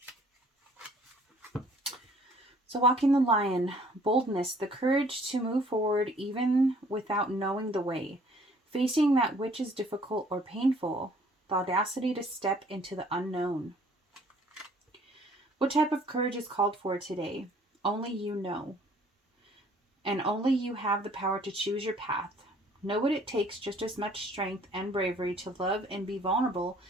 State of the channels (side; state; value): both; normal; correlation 0.57